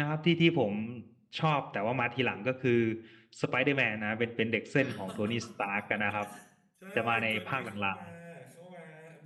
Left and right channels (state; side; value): identical; both; correlation 1.00